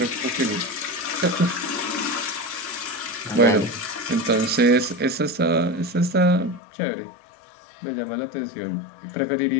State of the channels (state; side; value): drops out; right; at 6.6 s